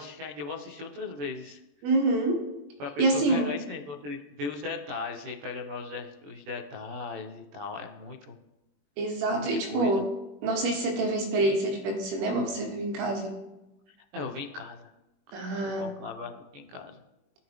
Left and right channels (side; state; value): left; late; 21 ms